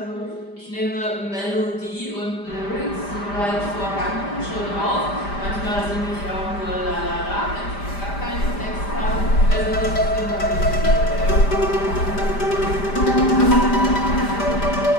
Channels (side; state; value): right; late; 5.0 ms